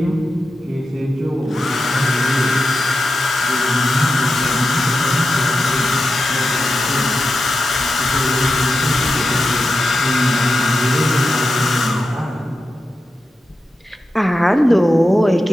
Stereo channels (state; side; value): normal; both; correlation 0.90